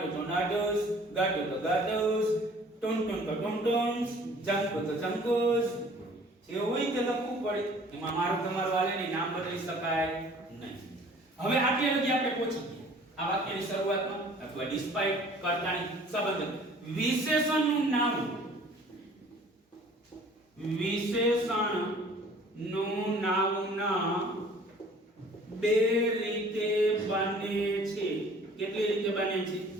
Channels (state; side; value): normal; both; correlation 0.51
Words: તો નટુસ, ગાટુ તો ગાટુસ, ટુનટુન તો ટુનટુન્સ, જંકુ તો જંકુસ. જે હોય તે લખવું પડે. એમાં મારું તમારું વાલેની નામ બદલી શકાય નહીં. હવે આટલે લગી આપણે પહોંચી ગયા આ વાક્યની શરૂઆતમાં અથવા ડિસ્પાઇટ, કર્તાની સંબંધક. વિશેષણનું નામ, વિશેષણનું નાઉન બે રીતે બને છે. કેટલી રીતે બને છે?